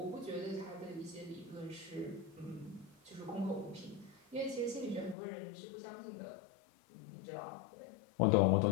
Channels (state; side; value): drops out; right; at 5.2 s